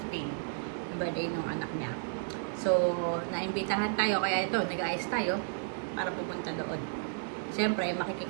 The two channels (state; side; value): silent; left; 56 dB below the other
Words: 15. Birthday ng anak niya. So, naimbitahan tayo. Kaya ito, nag-ayos tayo para pupunta doon. Siyempre,